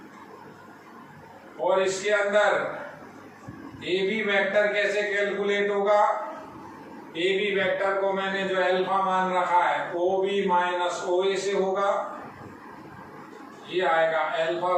और इसके अंदर ए बी वेक्टर कैसे कैलकुलेट होगा? ए बी वेक्टर को मैंने जो अल्फा मान रखा है ओ बी माइनस ओ ए से होगा, ये आएगा अल्फा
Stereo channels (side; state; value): both; identical; correlation 1.00